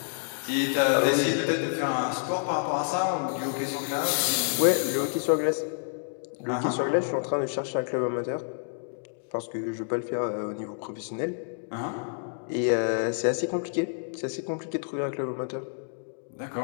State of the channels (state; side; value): silent; right; digital silence